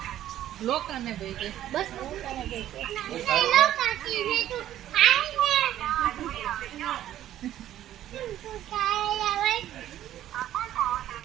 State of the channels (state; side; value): quieter; left; 12.4 dB